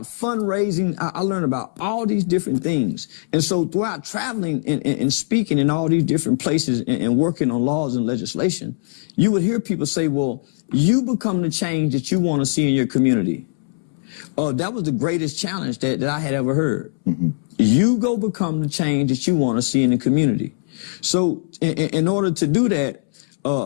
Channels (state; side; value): silent; right; 64 dB below the other